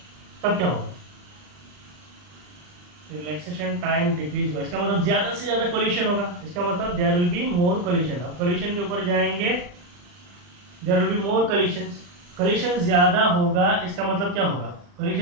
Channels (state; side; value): late; left; 40 ms